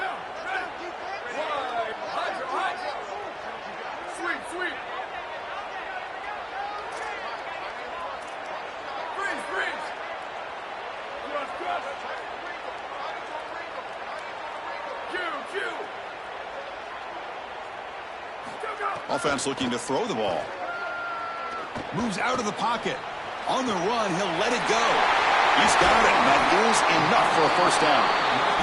Offense looking to throw the ball. Moves out of the pocket. On the run, he'll let it go. He's got it, and that is enough for a first down.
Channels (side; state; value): both; identical; correlation 1.00